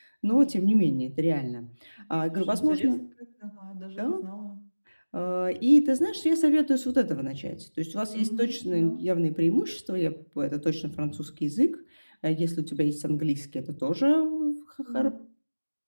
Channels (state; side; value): inverted; both; correlation -1.00